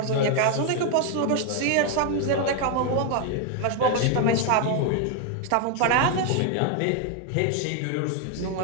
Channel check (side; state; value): both; different; correlation 0.00